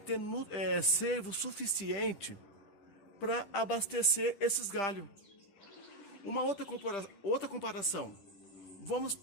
servo suficiente para abastecer esses galhos. Uma outra comparação. Vamos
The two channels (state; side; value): late; right; 10 ms